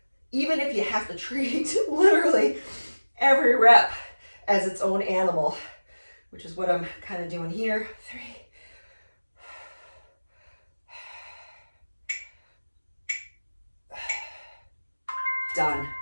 Even if you have to treat literally every rep as its own animal, which is what I'm kind of doing here. 3. Done.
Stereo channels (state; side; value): inverted; both; correlation -1.00